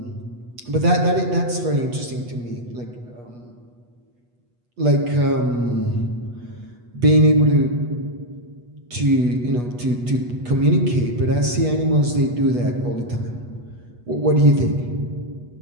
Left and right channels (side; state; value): left; late; 8.2 ms